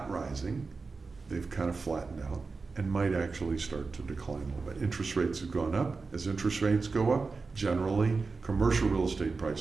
rising. They've kind of flattened out and might actually start to decline a little bit. Interest rates have gone up. As interest rates go up, generally commercial real estate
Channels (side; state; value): left; quieter; 4.2 dB